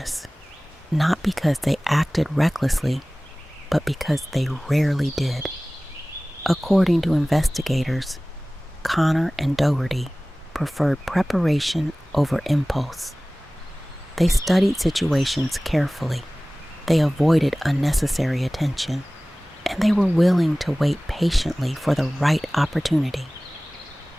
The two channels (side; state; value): both; normal; correlation 0.98